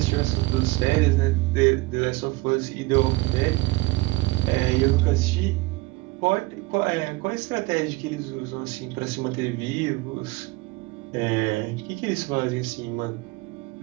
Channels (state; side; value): quieter; left; 22.2 dB